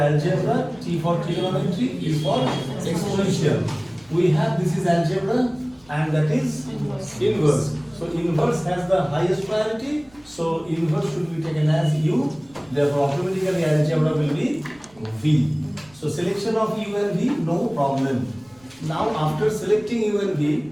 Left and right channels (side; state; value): right; noise; rumble, 29 dB below the sound